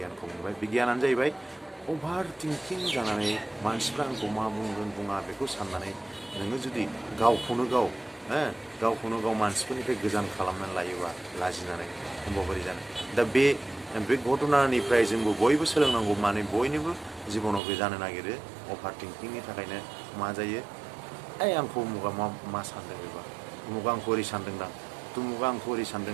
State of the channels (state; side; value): drops out; left; at 17.6 s